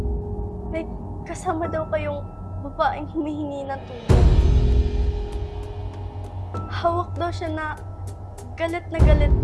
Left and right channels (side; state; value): both; identical; correlation 1.00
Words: May kasama daw kayong babaeng humihingi ng tulong. Hawak daw siya na galit